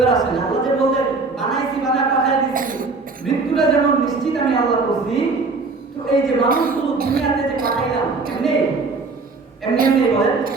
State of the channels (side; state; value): left; quieter; 4.0 dB